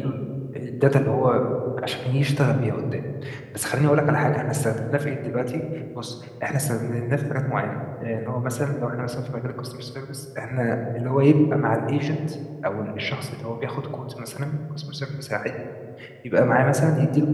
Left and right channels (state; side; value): identical; both; correlation 1.00